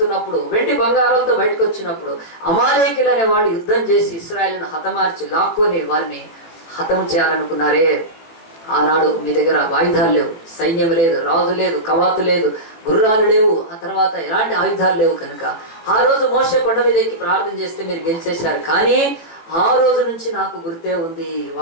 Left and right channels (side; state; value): right; late; 18 ms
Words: వెండి బంగారాలతో బయటకు వచ్చినప్పుడు అమాలేకీలు అనే వాళ్ళు యుద్ధం చేసి ఇశ్రాయేలును హతమార్చి లాక్కొని వారిని హతం చేయాలనుకున్నారే. ఆనాడు మీ దగ్గర ఆయుధాలు లేవు, సైన్యం లేదు, రాజు లేదు, కవాతు లేదు, గుర్రాలు లేవు, ఆ తర్వాత ఎలాంటి ఆయుధాలు లేవు కనుక ఆ రోజు మోషే కొండ మీద ఎక్కి ప్రార్థన చేస్తే మీరు గెలిచేశారు. కానీ ఆ రోజు నుంచి నాకు గుర్తే ఉంది